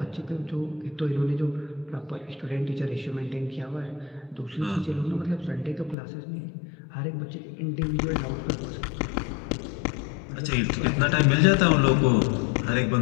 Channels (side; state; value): right; drops out; at 6.0 s